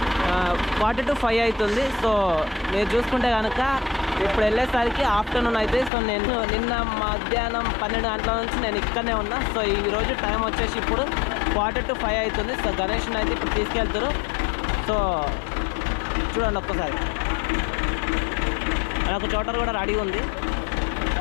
4 to 5 అవుతుంది. సో మీరు చూసుకుంటే కనుక ఇప్పుడు వెళ్ళేసరికి ఆఫ్టర్నూన్ అవుతుంది. సో నేను నిన్న మధ్యాహ్నం 12 గంటల నుంచి నేను ఇక్కడనే ఉన్నా. సో ఈరోజు టైం వచ్చేసి ఇప్పుడు 4 to 5 అవుతుంది. సో గణేష్ని అయితే ఇప్పుడు తీసుకెళ్తారు. సో చూడండి ఒక్కసారి, నాకు చోటర్ కూడా రెడీ ఉంది.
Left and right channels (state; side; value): drops out; right; at 5.9 s